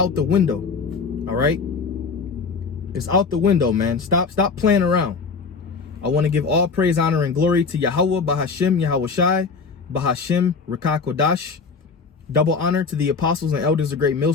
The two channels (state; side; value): quieter; right; 4.9 dB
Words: the window. All right. It's out the window, man. Stop playing around. I want to give all praise, honor, and glory to Yahweh, Bahashim, Yahweh Shai, Bahashim, Rakah Kodash. Double honor to the apostles and elders of Great